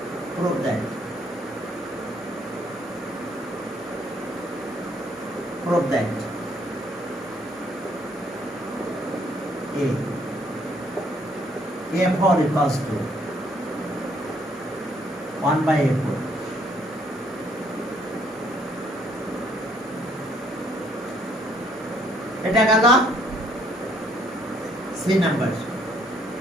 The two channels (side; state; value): both; normal; correlation 0.66